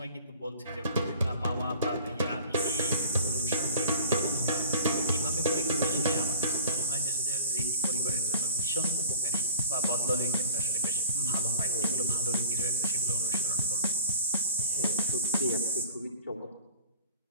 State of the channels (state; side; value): inverted; both; correlation -0.43